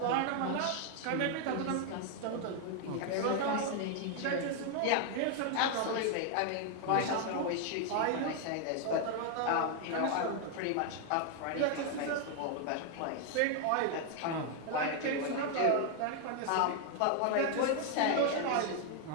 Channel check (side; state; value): both; different; correlation 0.00